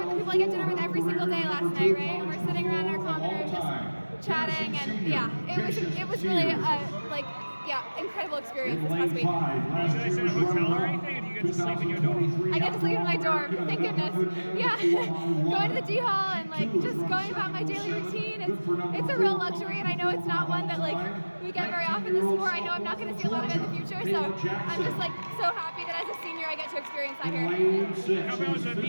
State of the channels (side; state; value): both; inverted; correlation -1.00